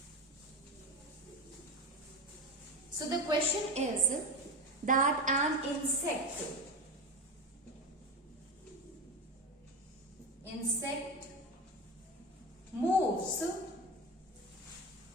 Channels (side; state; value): both; normal; correlation 0.21